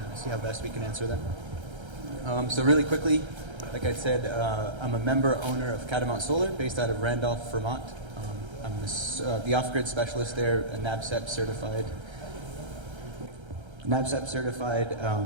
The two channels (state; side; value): late; left; 1.3 ms